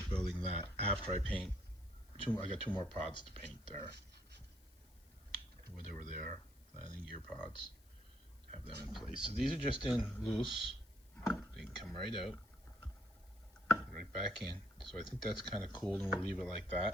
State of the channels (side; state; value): left; noise; hiss, 29 dB below the sound